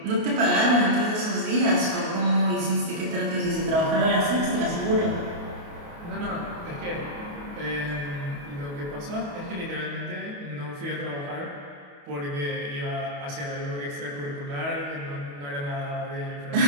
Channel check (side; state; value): left; late; 28 ms